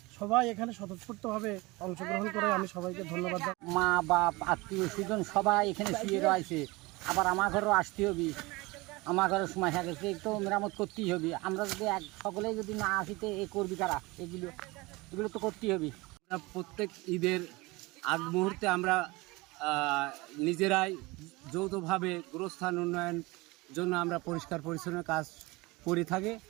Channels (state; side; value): quieter; left; 23.1 dB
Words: সবাই এখানে স্বতঃস্ফূর্তভাবে অংশগ্রহণ করে আমি সবাইকে ধন্যবাদ। মা বাপ আত্মীয় স্বজন সবাই এখানে শুয়ে রয়েছে, আবার আমার ঘরেও আসতে হবে, আমার ঘরের সময় হয়ে গেছে, তো মেরামত করতেই হবে। আমরা যদি সকলেই যদি না আসিতে এ করবি কারা, এগুলো তো করতেই হবে। প্রত্যেক ঈদের আগ মুহূর্তে আমরা নিজেরাই যৌথভাবে গোরস্থান উন্নয়ন জন্য আমরা পরিষ্কার পরিচ্ছন্ন কাজ করে থাকি।